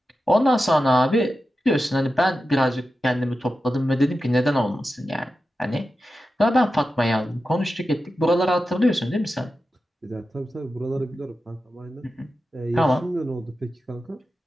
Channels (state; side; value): normal; both; correlation 0.92